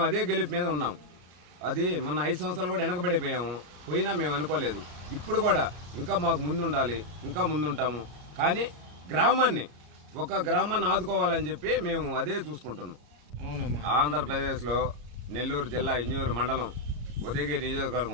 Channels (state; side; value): late; left; 33 ms